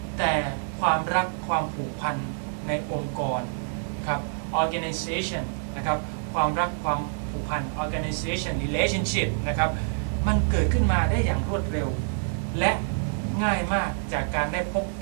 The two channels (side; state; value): left; silent; digital silence